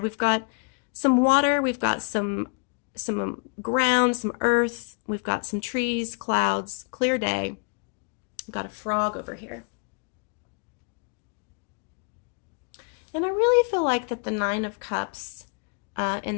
We've got some water, we've got some ground, some earth, we've got some trees, clouds, clear day. We've got a frog over here. And I really feel like that the Nine of Cups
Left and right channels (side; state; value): right; quieter; 38.7 dB